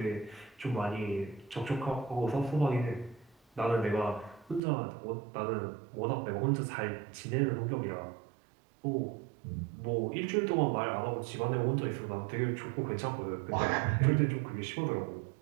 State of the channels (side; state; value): left; drops out; at 4.6 s